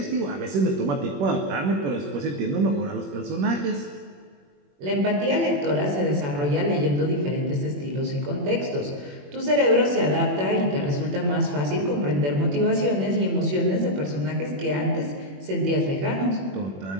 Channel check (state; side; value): late; left; 21 ms